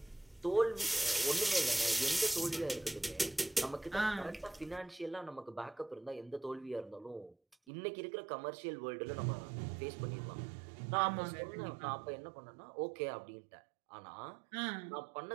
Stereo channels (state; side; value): drops out; left; at 7.6 s